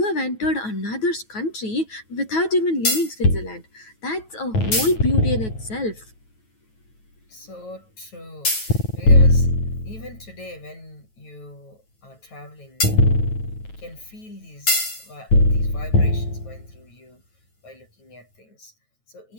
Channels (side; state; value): right; late; 9.2 ms